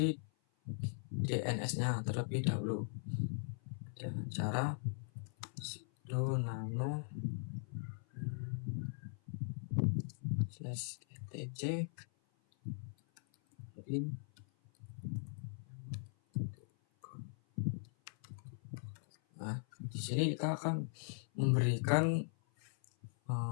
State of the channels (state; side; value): silent; right; 51 dB below the other